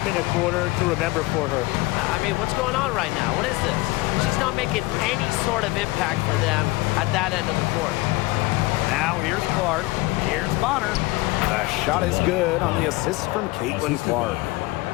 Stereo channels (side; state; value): right; quieter; 21.1 dB